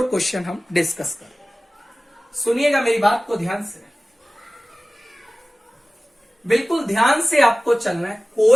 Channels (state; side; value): normal; both; correlation 0.97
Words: क्वेश्चन हम डिस्कस करें। सुनिएगा मेरी बात को ध्यान से, बिल्कुल ध्यान से आपको चलना है,